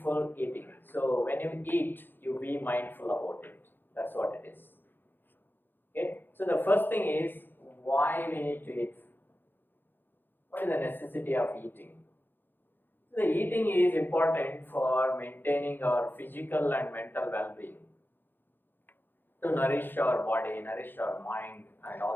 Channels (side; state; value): right; late; 0.096 ms